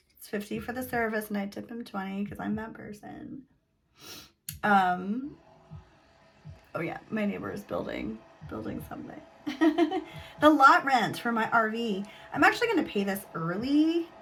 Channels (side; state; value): both; identical; correlation 1.00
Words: $50 for the service, and I tip him $20 because I'm that person. Oh yeah, my neighbor is building something. The lot rent for my RV. I'm actually going to pay this early.